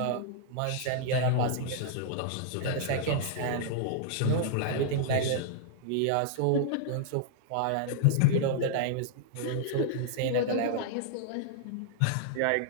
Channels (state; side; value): different; both; correlation -0.01